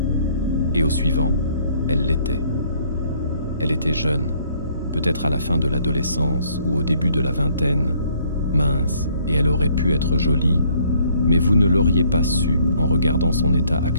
et au suivant, elle l'était. Elle était jeune, peut-être à la fin de l'adolescence ou au début de la vingtaine, mince, et elle aurait pu être jolie, mais vous ne l'auriez pas su en regardant son état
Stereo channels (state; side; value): inverted; both; correlation -0.63